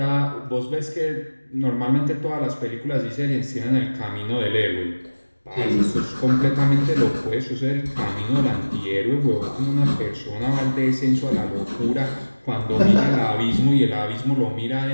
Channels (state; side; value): inverted; both; correlation -1.00